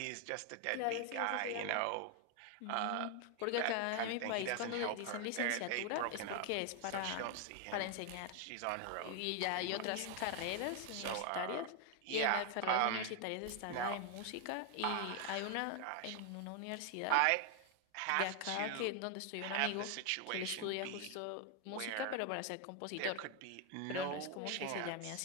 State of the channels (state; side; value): different; both; correlation 0.00